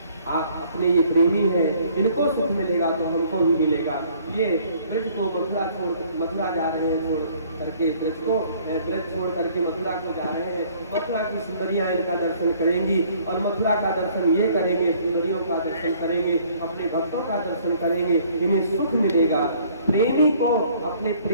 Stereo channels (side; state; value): both; inverted; correlation -0.59